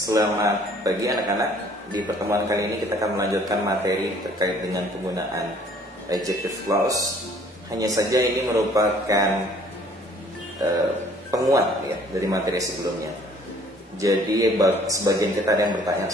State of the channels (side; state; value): both; normal; correlation 0.57